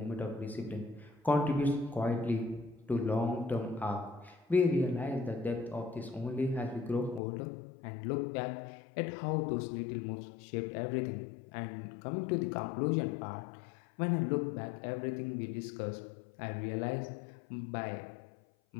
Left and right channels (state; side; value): drops out; right; at 7.2 s